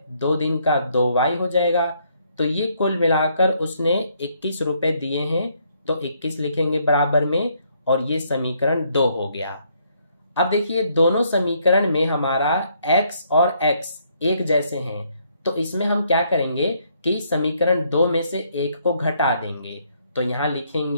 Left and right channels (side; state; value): both; inverted; correlation -0.70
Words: 2 दिन का 2y हो जाएगा। तो ये कुल मिलाकर उसने 21 रुपए दिए हैं, तो 21 लिखेंगे बराबर में और ये समीकरण 2 हो गया। अब देखिए दोनों समीकरण में हमारा x और x एक जैसे हैं, तो इसमें हम क्या करेंगे कि समीकरण 2 में से एक को घटा देंगे। तो यहां